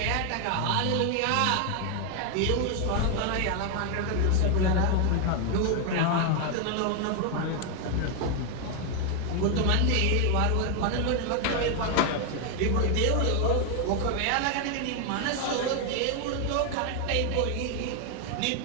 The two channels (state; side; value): different; both; correlation 0.01